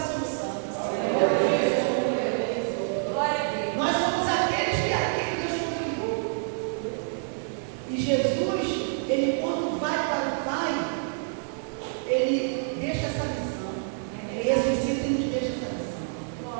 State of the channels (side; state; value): left; silent; digital silence